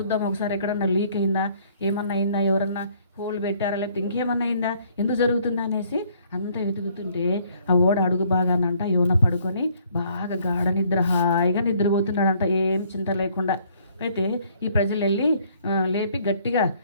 ఒకసారి, ఎక్కడన్నా లీక్ అయిందా, ఏమన్నా అయిందా, ఎవరన్నా హోల్ పెట్టారా, లేకపోతే ఇంకేమన్నా అయిందా, ఎందుకు జరుగుతుందా అనేసి అంతా వెతుకుతుంటే ఆ ఓడ అడుగు బాగానంట యోన పడుకొని బాగా గాఢ నిద్ర హాయిగా నిద్రపోతున్నాడంట, ఏం చింత లేకుండా. అయితే ఈ ప్రజలు వెళ్ళి లేపి గట్టిగా,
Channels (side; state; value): both; inverted; correlation -0.62